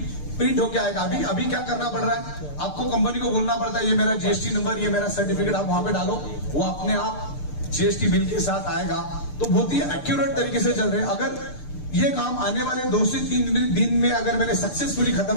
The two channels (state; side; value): late; right; 6.7 ms